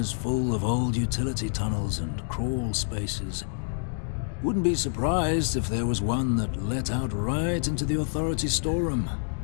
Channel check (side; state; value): right; silent; digital silence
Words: full of old utility tunnels and crawl spaces. Wouldn't be surprised if there was one that let out right into the authority storeroom.